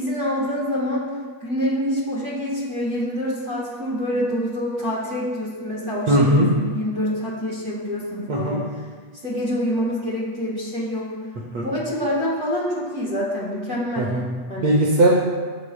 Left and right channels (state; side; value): late; left; 8.3 ms